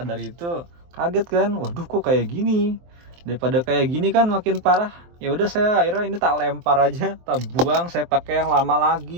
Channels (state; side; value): late; left; 23 ms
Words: itu kaget kan, waduh kok kayak gini. Daripada kayak gini kan makin parah. Ya udah, saya akhirnya ini tak lempar aja, tak buang, saya pakai yang lama